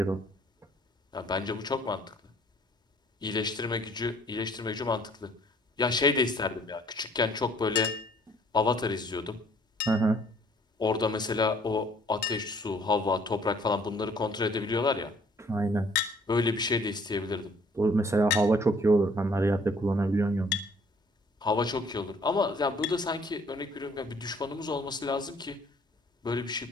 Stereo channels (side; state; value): both; normal; correlation 0.59